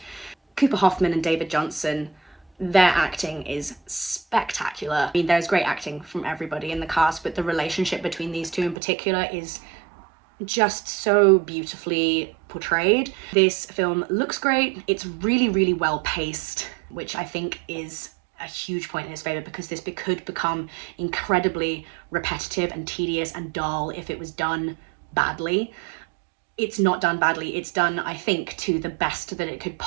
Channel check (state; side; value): drops out; left; at 8.8 s